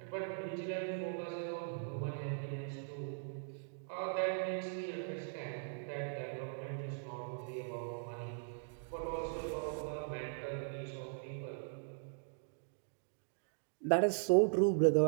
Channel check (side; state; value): left; silent; digital silence